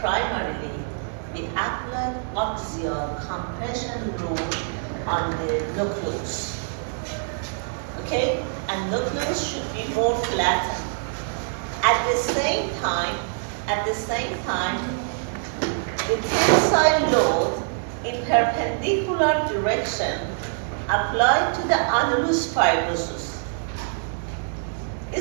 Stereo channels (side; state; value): left; silent; 62 dB below the other